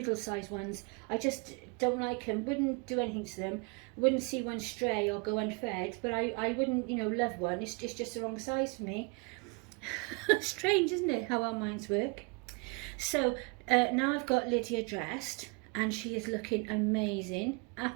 ones. I just don't like them. Wouldn't do anything to them. Wouldn't see one stray or go unfed. But I wouldn't, love one. It's just the wrong size for me. Strange, isn't it, how our minds work? So now I've got Lydia dressed, and she is looking amazing,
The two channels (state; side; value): quieter; left; 31.4 dB